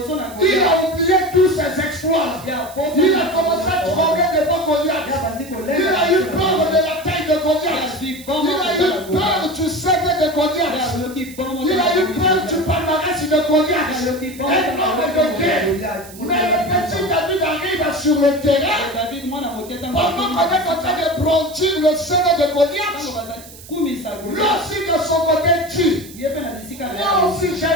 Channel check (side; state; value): right; noise; hiss, 18 dB below the sound